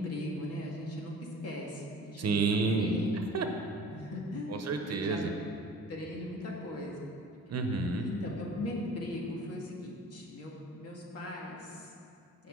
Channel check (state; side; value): normal; both; correlation 0.45